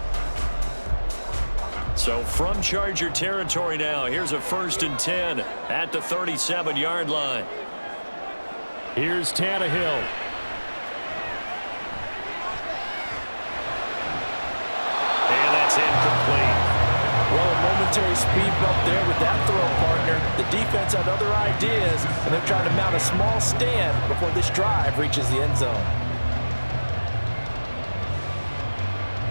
So from Charger territory now, here's a 1st and 10 at the 37-yard line. Here's Tannehill. And that's incomplete. Well, a momentary speed bump there with that throw, partner. The defense had other ideas, and they're trying to mount a small stand before this drive reaches the end zone.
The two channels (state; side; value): inverted; both; correlation -1.00